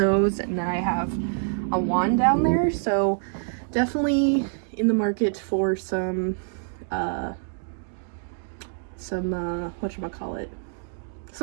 and then I have a wand down there, so definitely in the market for some whatchamacallit,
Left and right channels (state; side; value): silent; left; digital silence